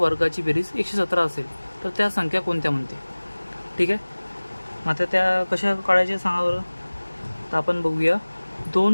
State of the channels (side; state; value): both; inverted; correlation -1.00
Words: बेरीज 117 असेल तर त्या संख्या कोणत्या म्हणते? ठीक आहे. आता त्या कशा काढायच्या सांगा बरं. तर आपण बघूया.